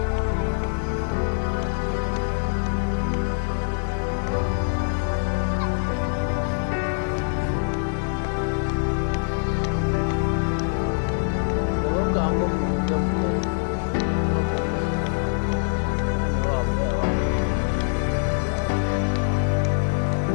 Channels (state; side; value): silent; right; digital silence